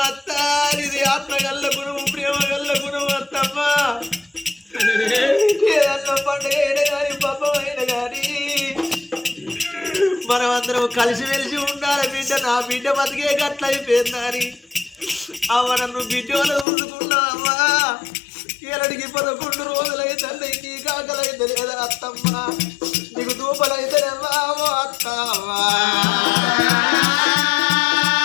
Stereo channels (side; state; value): right; drops out; at 16.7 s